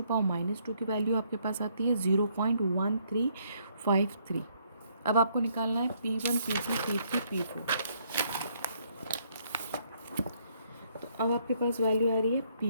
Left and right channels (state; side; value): inverted; both; correlation -0.69